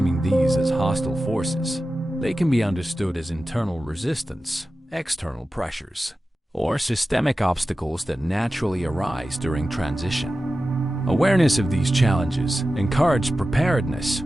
these as hostile forces, they can be understood as internal resistance, external pressures, or systemic obstacles that naturally arise during transition. Awareness of these challenges encourages preparedness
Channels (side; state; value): both; normal; correlation 0.94